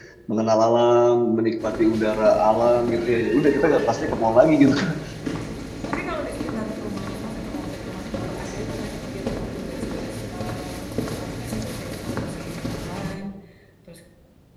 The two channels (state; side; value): identical; both; correlation 1.00